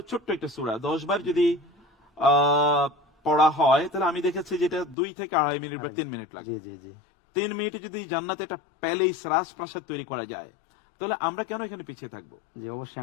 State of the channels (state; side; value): drops out; right; at 5.0 s